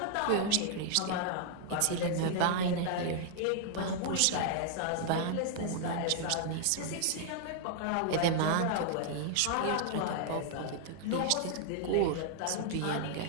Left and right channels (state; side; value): different; both; correlation -0.01